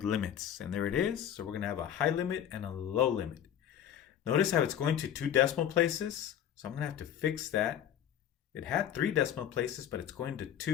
limits. And there it is. So we're going to have a high limit and a low limit. Notice how it's going to 2 decimal places. So I'm going to have to fix that. It had 3 decimal places, but it's going to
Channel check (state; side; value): quieter; right; 10.1 dB